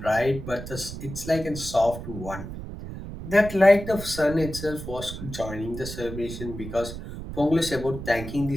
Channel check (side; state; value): right; noise; rumble, 9 dB below the sound